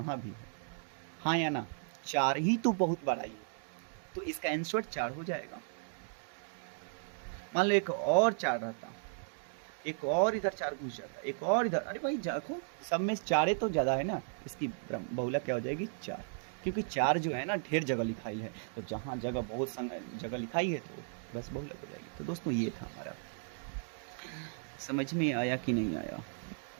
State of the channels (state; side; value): silent; left; digital silence